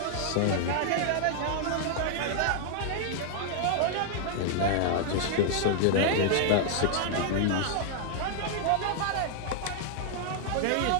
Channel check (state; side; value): different; both; correlation 0.00